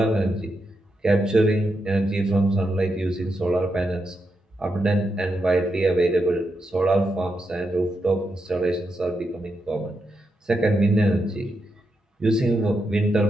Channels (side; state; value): both; normal; correlation 0.84